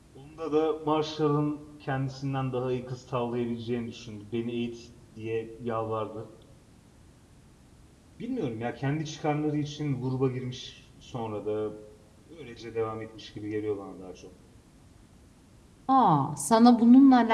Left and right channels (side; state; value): both; identical; correlation 1.00